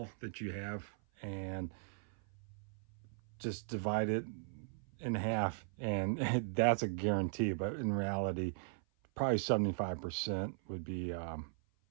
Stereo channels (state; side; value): silent; left; 52 dB below the other